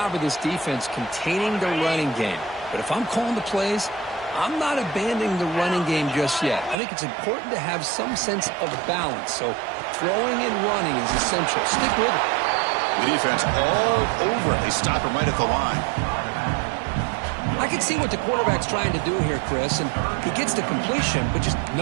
of this defense containing the running game. But if I'm calling the plays, I'm not abandoning the running game just yet. I think it's important to have some sense of balance. So throwing and running is essential. Stick with it. The defense all over it. They stop him right at the line. I can see what the quarterback's trying to do here, Chris, and he gets the completion, but just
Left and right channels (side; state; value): left; drops out; at 6.8 s